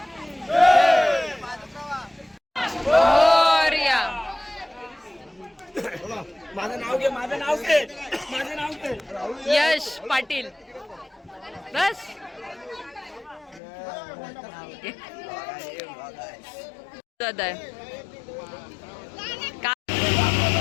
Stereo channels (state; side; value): drops out; right; at 13.6 s